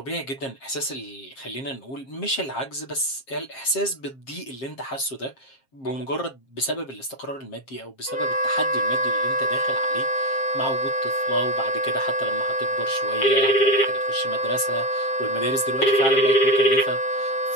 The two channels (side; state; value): right; late; 7.5 ms